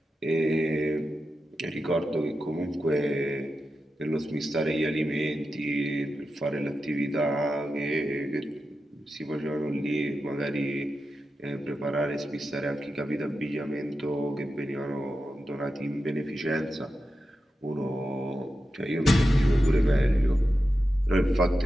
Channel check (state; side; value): normal; both; correlation 0.90